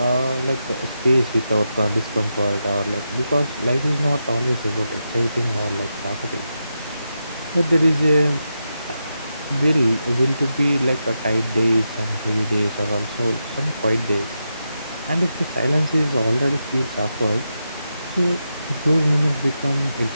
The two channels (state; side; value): inverted; both; correlation -0.87